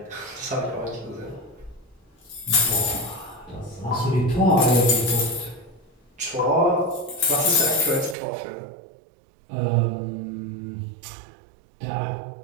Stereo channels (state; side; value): drops out; left; at 8.2 s